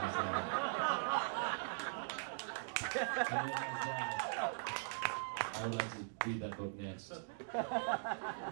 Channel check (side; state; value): left; silent; digital silence